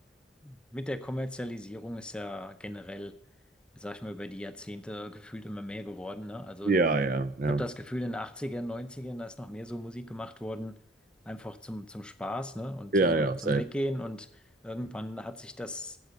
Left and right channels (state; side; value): normal; both; correlation 0.56